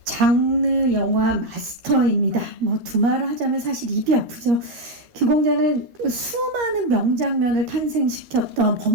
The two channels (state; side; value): late; left; 13 ms